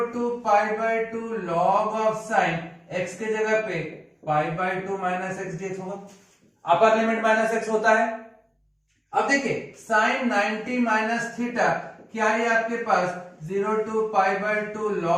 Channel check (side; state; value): both; identical; correlation 1.00